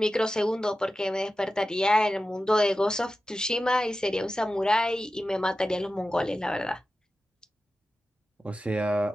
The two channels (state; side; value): normal; both; correlation 0.94